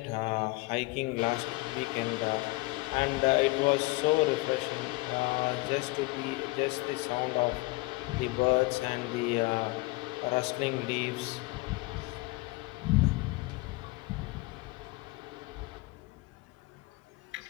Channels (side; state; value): right; quieter; 22.8 dB